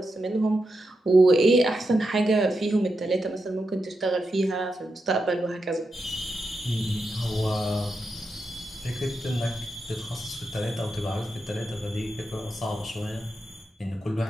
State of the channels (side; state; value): both; normal; correlation 0.87